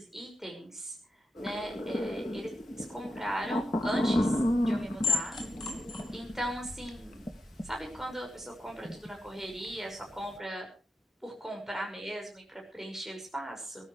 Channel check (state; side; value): normal; both; correlation 0.89